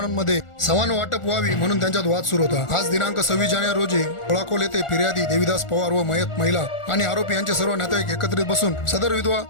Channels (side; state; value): right; late; 1.4 ms